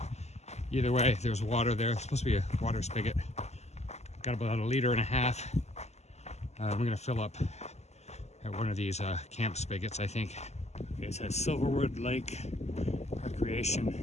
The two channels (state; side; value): late; right; 0.32 ms